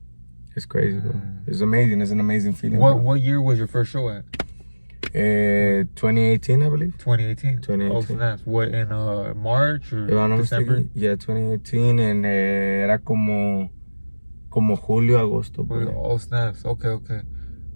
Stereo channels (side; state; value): both; inverted; correlation -1.00